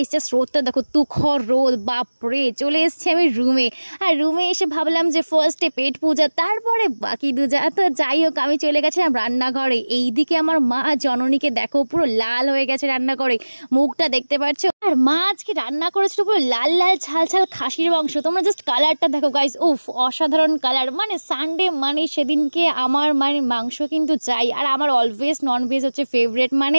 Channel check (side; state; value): both; inverted; correlation -1.00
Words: জাস্ট রোদটা দেখো, তুখর রোদ, বাপরে। চলে এসেছি আমি রুমে, আর রুমে এসে ভাবলাম যে ফার্স্টে পেট পূজা, তারপরে বাকি দুজা। তো যাই হোক, আমি চলে গেছিলাম রান্নাঘরে। এইদিকে আমার মা জননীকে দেখো, পুরো লাল হয়ে গেছে রান্নাঘরে, মুখটা দেখতে পাচ্ছ। আর মা আজকে রান্না করেছিল পুরো লাল লাল ঝাল ঝাল খাসির মাংস। তোমরা জাস্ট কালারটা দেখো গাইস, উফ, অসাধারণ কালার। মানে সানডে মানে সেদিনকে আমার মানে মাংস কিন্তু চাই, আর আমার অলওয়েজ ননভেজ হচ্ছে ফেভারিট, মানে